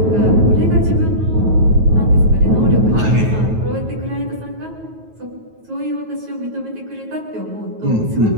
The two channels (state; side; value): late; left; 9.3 ms